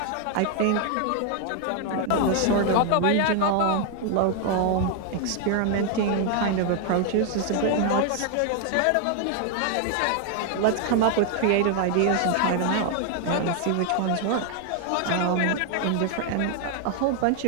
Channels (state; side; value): different; both; correlation 0.00